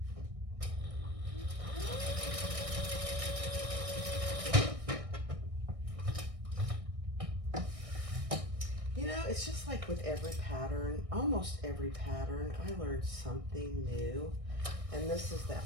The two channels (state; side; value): late; left; 1.6 ms